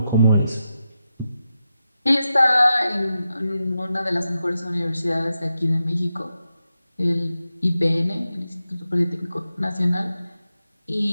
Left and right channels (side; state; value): both; inverted; correlation -0.89